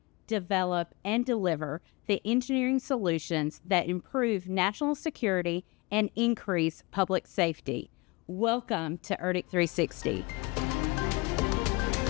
develop, and deliver the engineering solutions that improve national security and increase public safety. Welcome to ERDC360.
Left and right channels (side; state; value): right; quieter; 25.7 dB